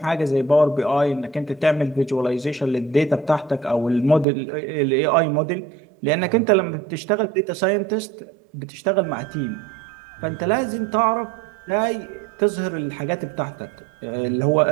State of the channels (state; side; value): drops out; left; at 4.2 s